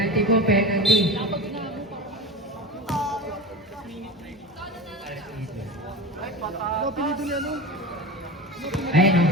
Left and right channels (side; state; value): both; normal; correlation 0.28